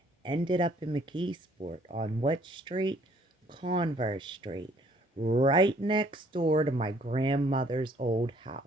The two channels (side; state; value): both; normal; correlation 0.61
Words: ended up in McKeesport on what street? Converse Street, right next door to my grandmother's old